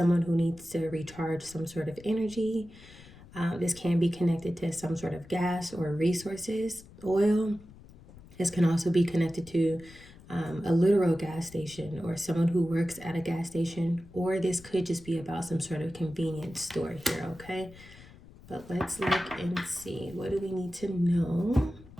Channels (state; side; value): noise; left; rumble, 21 dB below the sound